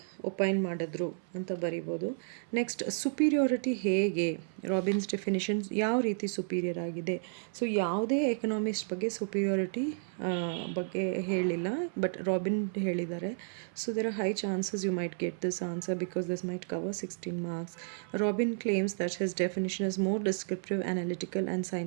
ಒಪೈನ್ ಮಾಡಿದ್ರು ಅಂತ ಬರಿಬೋದು. ನೆಕ್ಸ್ಟ್, ಸುಪೀರಿಯಾರಿಟಿ ಹೇಗೆ, ರಾಬಿನ್ಸ್ ಡೆಫಿನೇಷನ್ಸ್ ಯಾವ ರೀತಿ ಸುಪೀರಿಯರ್ ಆಗಿದೆ. ಸೊ ಯಾವುದೇ ಎಕನಾಮಿಸ್ಟ್ ಬಗ್ಗೆ ಸುಪೀರಿಯಾರಿಟಿ ಬಗ್ಗೆ ಹೇಳಿಲ್ಲ, ಬಟ್ ರಾಬಿನ್ ಹೇಳಿದ್ದಾರೆ. So there are high chances you might get this answer because this might cover 16 marks. Robin claims that his definition is more descriptive, analytical and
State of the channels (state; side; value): silent; left; 56 dB below the other